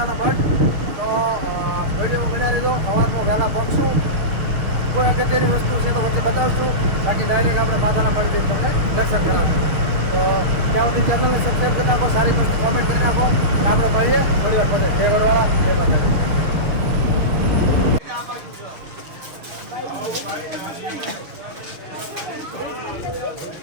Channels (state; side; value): late; left; 6.4 ms